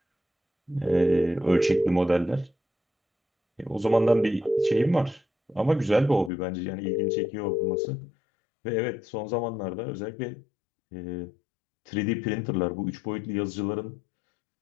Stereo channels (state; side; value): drops out; right; at 6.3 s